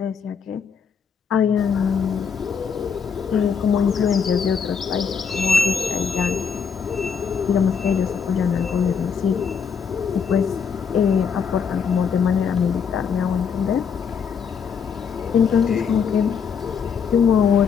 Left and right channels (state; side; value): quieter; right; 6.5 dB